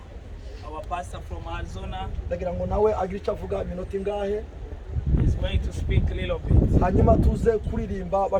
Our pastor from Arizona Ndagira ngo nawe agire icyo avuga iminota ingahe. is going to speak a little bit. Hanyuma tuze kuririmba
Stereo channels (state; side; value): identical; both; correlation 1.00